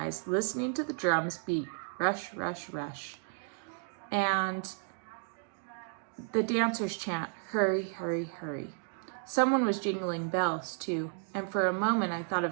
listening to the drums beat, rush, rush, rush, and the dancers chant, "Hurry, hurry, hurry." Someone was jingling bells, too, and for a moment I thought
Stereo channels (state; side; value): silent; left; 56 dB below the other